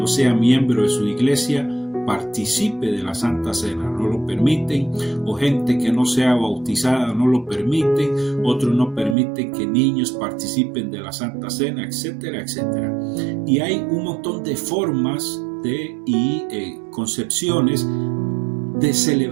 sea miembro de su iglesia participe de la Santa Cena, no lo permiten, o gente que no sea bautizada no lo permiten, otros no permiten que niños participen de la Santa Cena, etcétera, etcétera. Y hay un montón de formas y concepciones de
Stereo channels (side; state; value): left; drops out; at 9.2 s